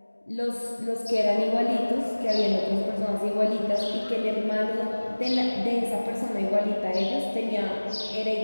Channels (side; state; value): both; inverted; correlation -1.00